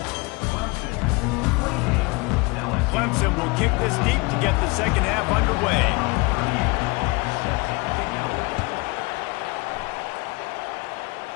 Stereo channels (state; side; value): quieter; right; 26.4 dB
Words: Clemson will kick this deep to get the second half underway.